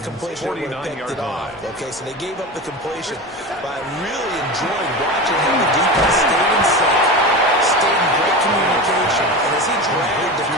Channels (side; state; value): both; normal; correlation 0.26